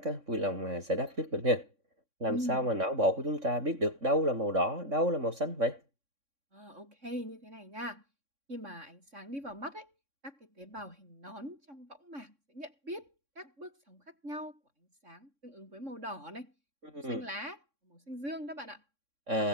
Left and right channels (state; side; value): late; left; 3.6 ms